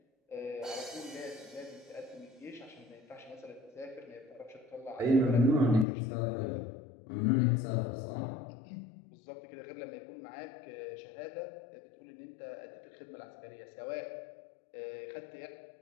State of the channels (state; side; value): drops out; right; at 5.9 s